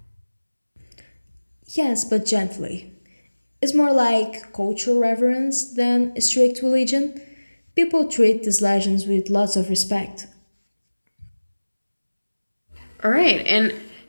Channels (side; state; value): both; inverted; correlation -1.00